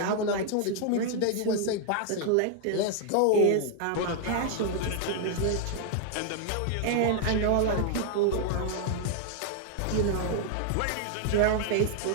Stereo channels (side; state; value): both; different; correlation 0.00